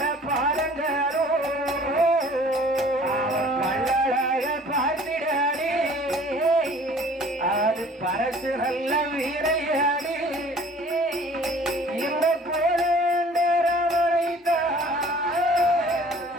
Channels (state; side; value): normal; both; correlation 0.51